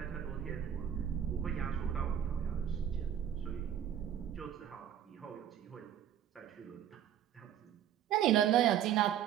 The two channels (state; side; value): quieter; left; 10.0 dB